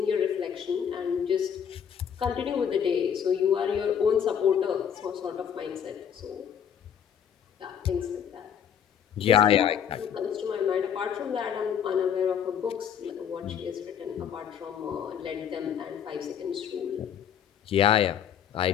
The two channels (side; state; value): right; quieter; 8.3 dB